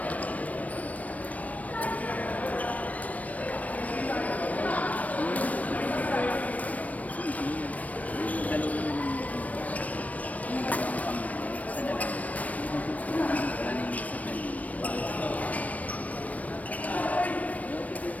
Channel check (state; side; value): late; right; 0.070 ms